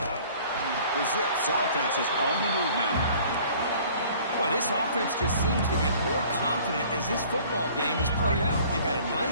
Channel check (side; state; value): both; inverted; correlation -0.52